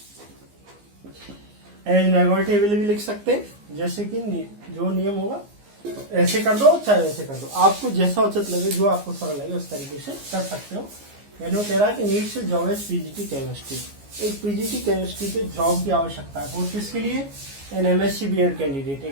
एज नेगोटिएबल भी लिख सकते हैं, जैसे कि जो नियम होगा तो ऐसे कर दो चाहे वैसे कर दो, आपको जैसा उचित लगे, जो आपको सरल लगे उस तरीके से कर सकते हो। मैंने वो कह रहा है कि needs job as PGT chemistry, एक पीजीटी केमिस्ट्री के जॉब की आवश्यकता है। और किसके लिए? एन एमएससी बीएड कैंडिडेट,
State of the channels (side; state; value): left; late; 15 ms